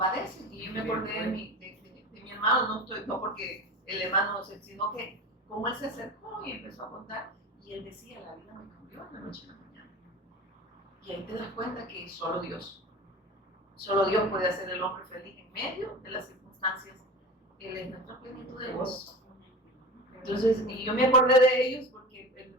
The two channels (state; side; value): normal; both; correlation 0.32